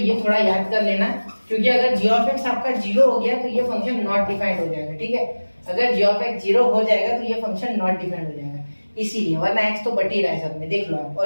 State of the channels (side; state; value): both; inverted; correlation -1.00